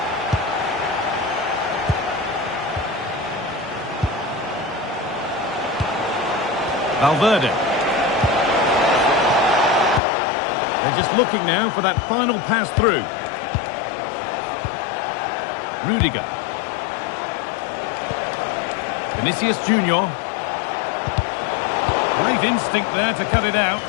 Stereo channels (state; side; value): drops out; right; at 10.0 s